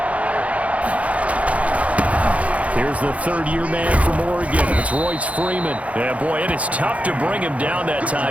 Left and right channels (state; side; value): late; left; 0.066 ms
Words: Here's the third-year man from Oregon. It's Royce Freeman. Yeah, boy, it is tough to bring him down that